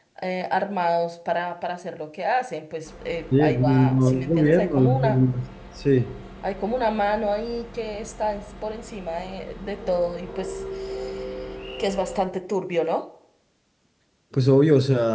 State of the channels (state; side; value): identical; both; correlation 1.00